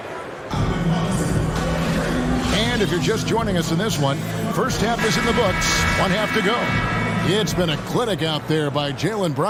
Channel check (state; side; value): identical; both; correlation 1.00